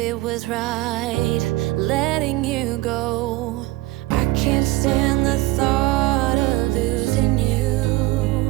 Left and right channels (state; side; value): quieter; left; 18.7 dB